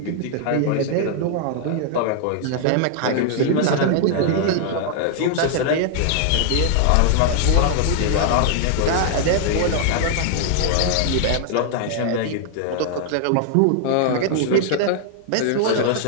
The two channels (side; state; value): both; different; correlation -0.01